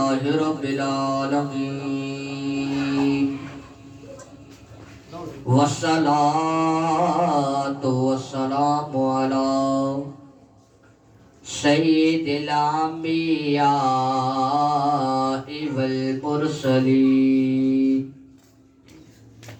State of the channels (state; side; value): identical; both; correlation 1.00